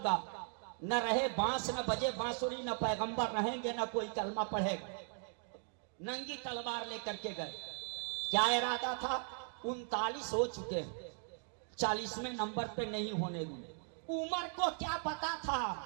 न रहे बांस न बजे बांसुरी, न पैगंबर रहेंगे न कोई कलमा पढ़ेगा। नंगी तलवार लेकर के गए। क्या इरादा था? 39 हो चुके हैं, 40वें नंबर पे नहीं होने दूंगे। उमर को क्या पता था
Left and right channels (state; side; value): silent; left; 52 dB below the other